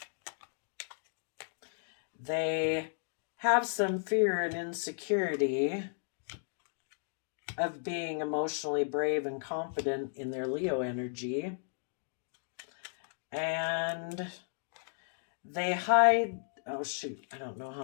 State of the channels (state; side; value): silent; right; digital silence